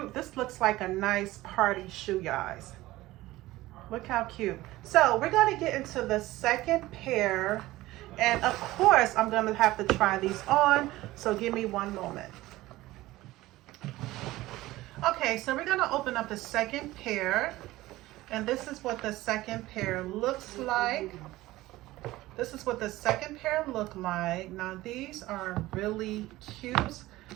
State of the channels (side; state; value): left; quieter; 17.6 dB